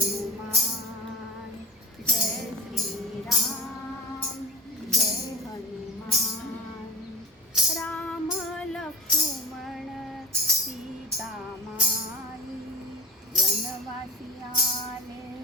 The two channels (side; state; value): both; normal; correlation 0.32